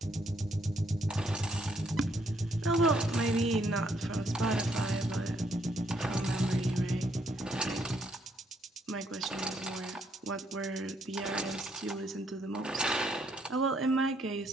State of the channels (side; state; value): both; normal; correlation 0.71